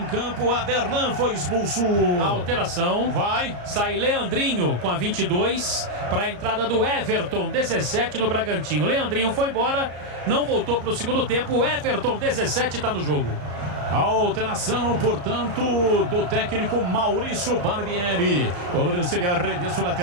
campo, Aderlan foi expulso. Alteração, sai Leandrinho com a 22 para a entrada do Everton, 17 no Bragantino. Leandrinho foi embora, não voltou para o segundo tempo, o Everton, 17, está no jogo. Alteração, portanto, do técnico Maurício Barbieri. Cobrança de arremesso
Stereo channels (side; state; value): left; late; 34 ms